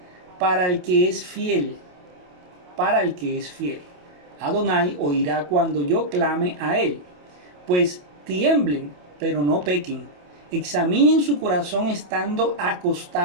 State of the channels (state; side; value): late; left; 28 ms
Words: para el que es fiel, para el que es fiel. Adonai oirá cuando yo clame a él. Pues tiemblen, pero no pequen. Examinen su corazón estando